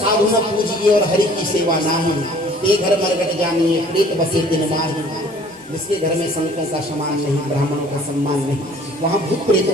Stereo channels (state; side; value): normal; both; correlation 0.53